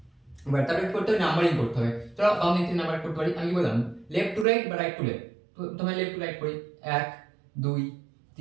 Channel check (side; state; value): left; drops out; at 4.5 s